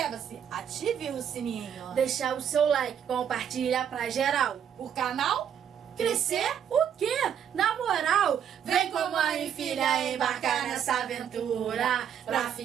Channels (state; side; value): quieter; left; 8.7 dB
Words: ative o sininho. deixar o seu like, compartilha pra geral. O canal Crescer o quê? Na moral, vem com mãe e filha embarcar nessa aventura pra